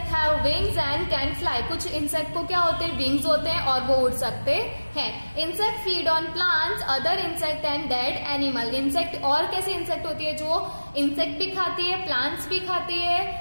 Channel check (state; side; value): inverted; both; correlation -1.00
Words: have wings and can fly, कुछ इंसेक्ट को क्या होते हैं? विंग्स होते हैं और वो उड़ सकते हैं. Insect feed on plants, other insect and dead animal, insect और कैसे इंसेक्ट होती है? जो इंसेक्ट भी खाती है, प्लांट्स भी खाती